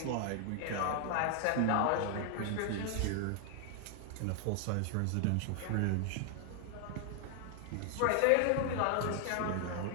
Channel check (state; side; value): different; both; correlation 0.00